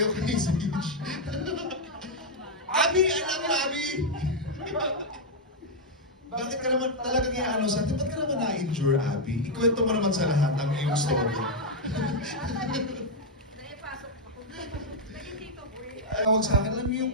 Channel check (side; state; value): both; normal; correlation -0.01